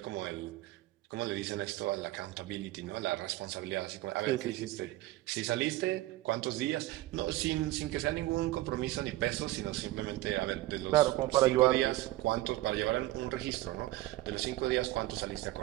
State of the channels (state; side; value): quieter; left; 16.9 dB